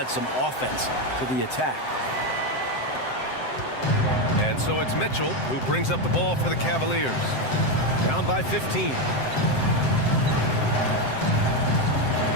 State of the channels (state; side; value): late; right; 7.7 ms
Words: some offense to the attack. And so it's Mitchell who brings up the ball for the Cavaliers. Down by 15.